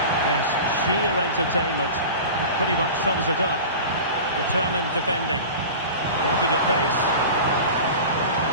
Yes, sheer entertainment. That pretty much sums it up. Determined defending. Working at pace.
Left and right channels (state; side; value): inverted; both; correlation -0.34